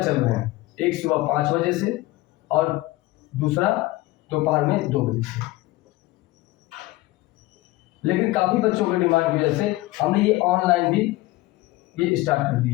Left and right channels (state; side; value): quieter; right; 18.9 dB